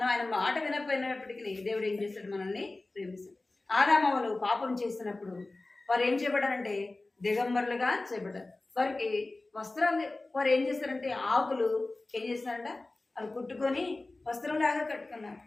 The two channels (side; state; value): right; quieter; 3.1 dB